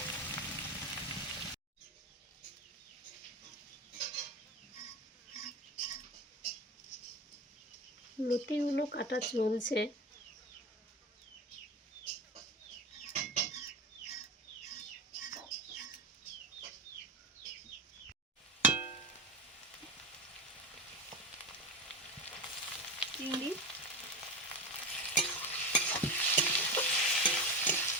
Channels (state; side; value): normal; both; correlation 0.24